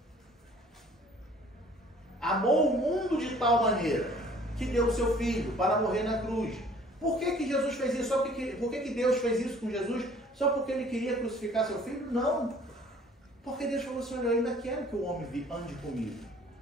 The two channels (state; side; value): normal; both; correlation 0.54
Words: Amou o mundo de tal maneira que deu o seu Filho para morrer na cruz. Por que Jesus fez isso? Por que Deus fez isso com Jesus? Só porque Ele queria crucificar seu Filho? Não. Porque Deus falou assim: olha, eu ainda quero que o homem ande comigo.